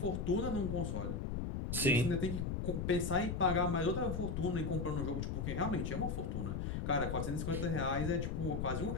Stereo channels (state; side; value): noise; left; rumble, 2 dB below the sound